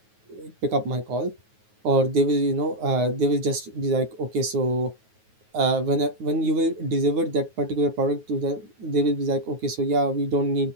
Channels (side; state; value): left; late; 9.4 ms